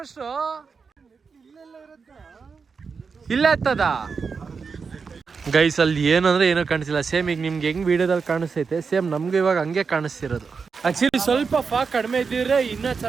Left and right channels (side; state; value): left; quieter; 5.3 dB